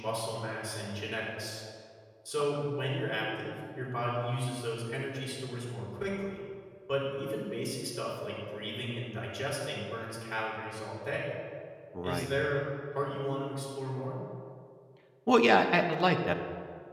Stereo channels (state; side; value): identical; both; correlation 1.00